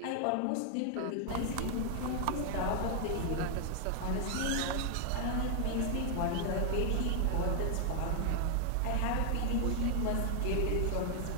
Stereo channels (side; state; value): both; different; correlation 0.00